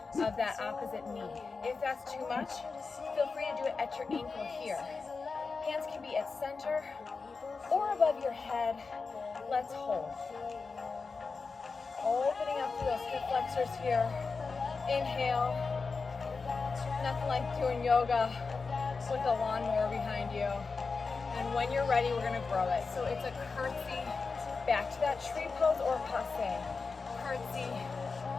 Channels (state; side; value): quieter; right; 4.5 dB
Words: of that opposite knee. If that's too much, feel free to do it at your ankle here. Hands can be at center or above your head. Let's hold. Opening up through those hip flexors here. Inhale. Nothing like doing yoga with a lawnmower behind you. And when you're ready, we're going to grow it. So it's a curtsy back to that tree pose or passe. Curtsy